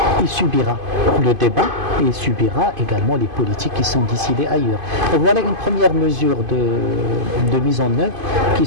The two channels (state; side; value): late; left; 2.5 ms